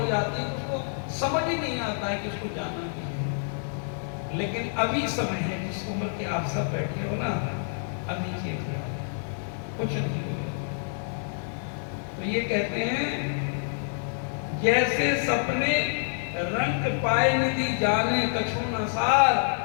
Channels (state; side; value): silent; right; digital silence